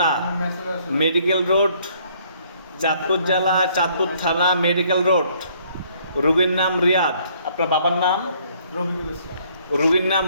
medical road, Chandpur জেলা, চাঁদপুর থানা, মেডিকেল রোড। রুগীর নাম রিয়াদ। আপনার বাবার নাম? রফিকুল ইসলাম। রুগীর নাম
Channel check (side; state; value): both; inverted; correlation -0.63